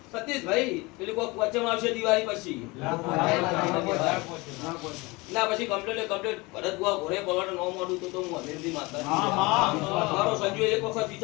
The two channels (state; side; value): quieter; right; 24.3 dB